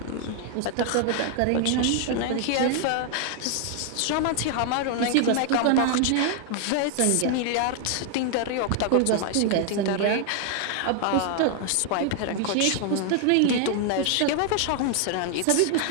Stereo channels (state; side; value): different; both; correlation 0.00